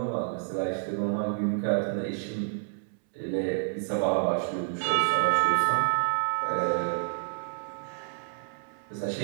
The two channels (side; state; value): left; silent; 59 dB below the other